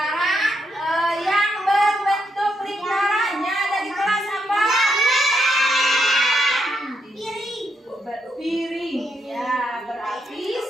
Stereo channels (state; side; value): normal; both; correlation 0.79